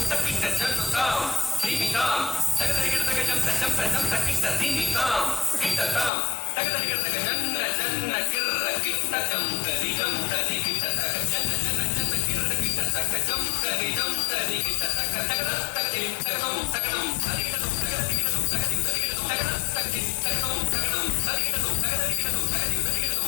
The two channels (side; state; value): right; drops out; at 6.1 s